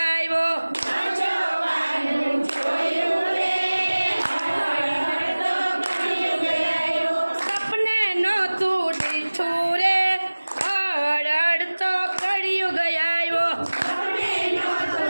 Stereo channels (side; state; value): both; inverted; correlation -1.00